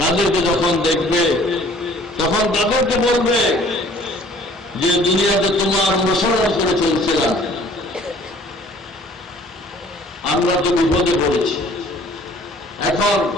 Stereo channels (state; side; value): normal; both; correlation 0.54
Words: তাদেরকে যখন দেখবে তখন তাদেরকে বলবে যে দুনিয়াতে তোমার অনুসরণ করে চলছিলাম, আমরা তো বিপদে পড়েছি, এখন